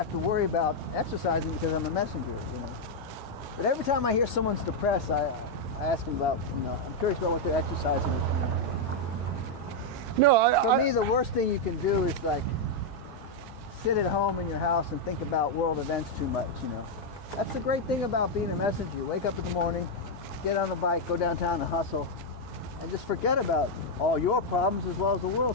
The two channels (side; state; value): both; normal; correlation 0.00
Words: to worry about exercising because I'm a messenger, But every time I hear someone's depressed, I ask them about, I'm curious about what they're exercising. For me, the worst thing you can do is sit at home in your house and think about world events too much, That's the great thing about being a messenger. You wake up in the morning, get on the bike, go downtown and hustle, and just forget about all your problems as well as the